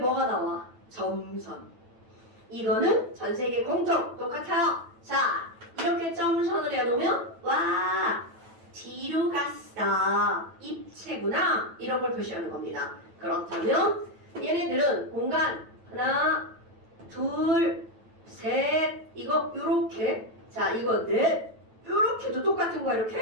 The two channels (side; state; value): left; late; 9.1 ms